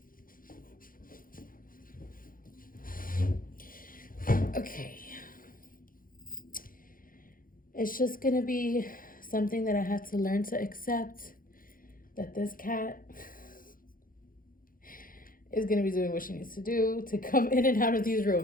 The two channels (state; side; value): late; right; 0.41 ms